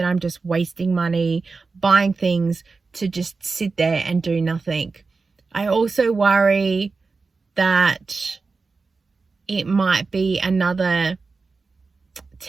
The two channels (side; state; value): left; quieter; 4.2 dB